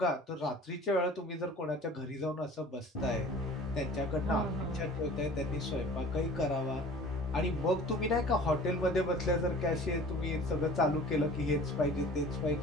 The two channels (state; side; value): normal; both; correlation 0.45